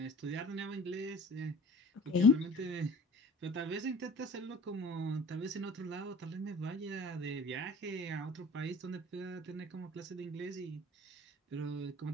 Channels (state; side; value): normal; both; correlation 0.44